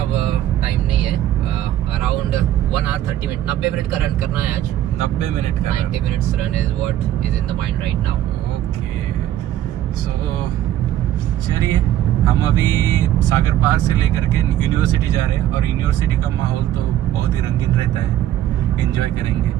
टाइम नहीं है. अराउंड 1 hour 30 minutes, 90 मिनट का रन करना है आज. 90 मिनट का. 90 minutes run is what is in the mind right now. Okay, so चलिए हम अभी सागर पार्क से लेकर के यूनिवर्सिटी जा रहे हैं. और यूनिवर्सिटी का माहौल तो बहुत ही रंगीन रहता है, एंजॉय करेंगे.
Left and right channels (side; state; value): left; quieter; 12.4 dB